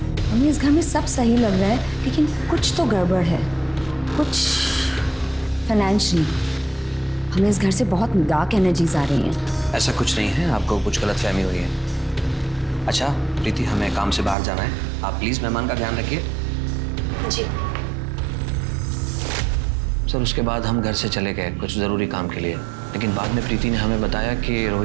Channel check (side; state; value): left; drops out; at 14.4 s